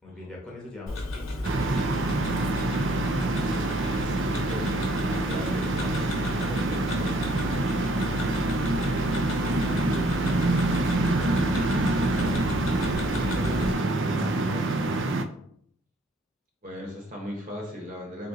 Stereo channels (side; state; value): both; normal; correlation 0.63